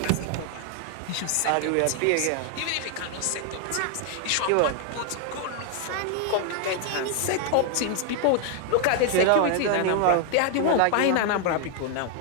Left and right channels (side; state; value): both; different; correlation 0.00